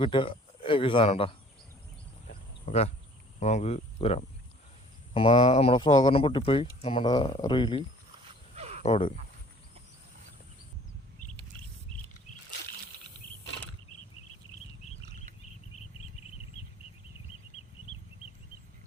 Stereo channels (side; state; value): both; normal; correlation 0.52